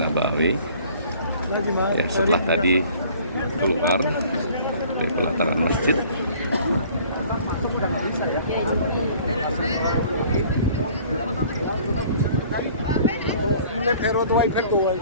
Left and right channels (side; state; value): both; inverted; correlation -0.53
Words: Ya, setelah tadi keluar dari pelataran masjid.